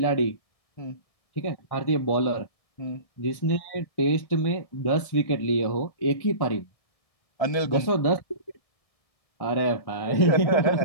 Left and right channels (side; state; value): right; late; 1.6 ms